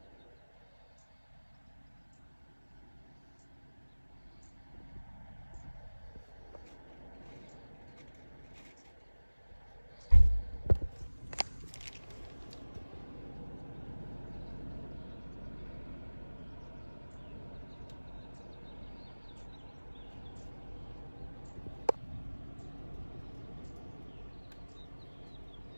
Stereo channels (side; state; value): both; inverted; correlation -1.00